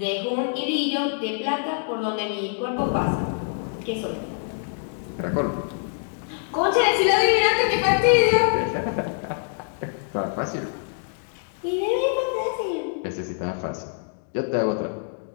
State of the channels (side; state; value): right; silent; digital silence